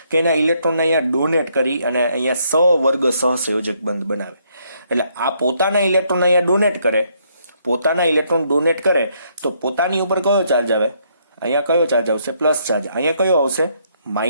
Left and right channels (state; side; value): inverted; both; correlation -0.71